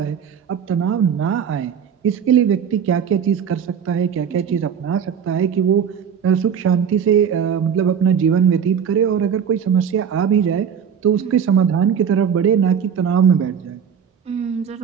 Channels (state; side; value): quieter; left; 7.7 dB